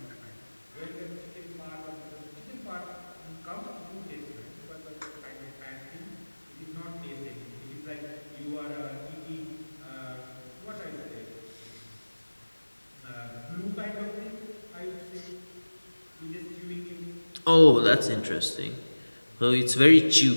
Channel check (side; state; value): both; inverted; correlation -1.00